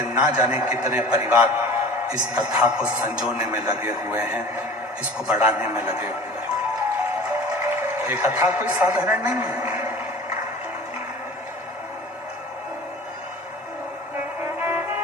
ना जाने कितने परिवार इस कथा को संजोने में लगे हुए हैं, इसको बढ़ाने में लगे हुए हैं। ये कथा कोई साधारण नहीं है।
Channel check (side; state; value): both; normal; correlation 0.41